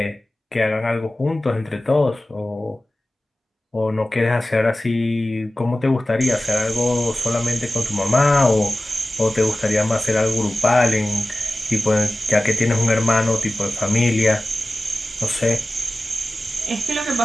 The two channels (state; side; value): normal; both; correlation 0.96